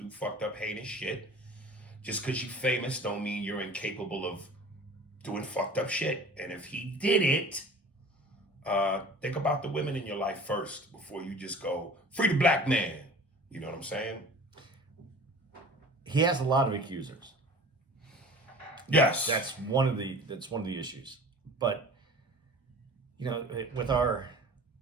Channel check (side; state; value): both; normal; correlation 0.42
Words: fucked up, heinous shit. Just because you're famous don't mean you're incapable of doing fucked up shit. And if he did it, think about the women in your life first before you just go, free the black man. You know what I'm saying? he has a lot of accusers. Yes. That's one of the issues. But with our